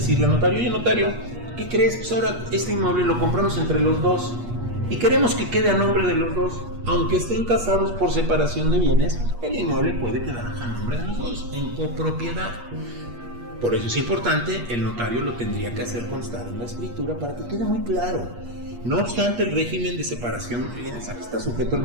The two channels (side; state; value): left; late; 8.4 ms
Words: al notario: oye, notario, ¿qué crees? Pues ahora este inmueble lo compramos entre los dos y queremos que quede a nombre de los dos. Aunque estén casados por separación de bienes, el inmueble puede quedar a nombre de los dos, en copropiedad. Por eso es importante, el notario lo tendría que hacer constar en la escritura para que quede muy claro. No obstante, el régimen de separación de bienes está sujeto al